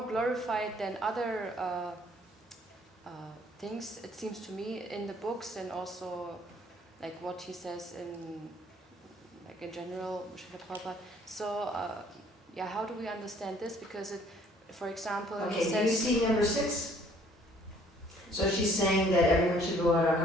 glorified than other things. It seems to me in the books, and also like what he says in general, Srila Prabhupada. So how do we understand this? Because it, for example, Okay, he do you says see number 6? So she's saying that everyone should go out on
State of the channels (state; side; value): normal; both; correlation 0.59